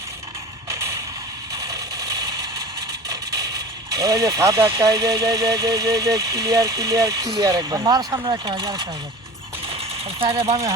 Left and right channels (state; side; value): normal; both; correlation 0.36